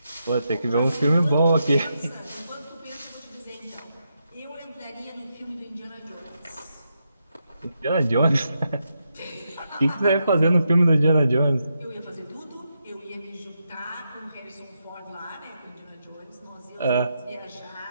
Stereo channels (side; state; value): both; inverted; correlation -0.84